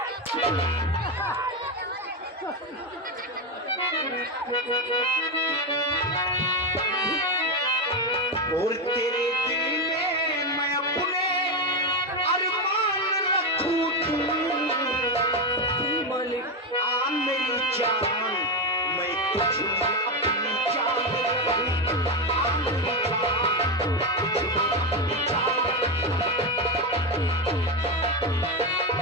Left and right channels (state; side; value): normal; both; correlation 0.10